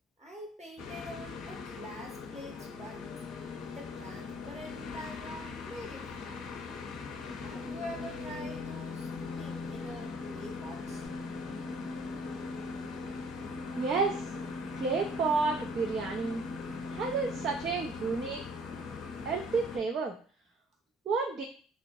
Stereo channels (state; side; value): normal; both; correlation 0.57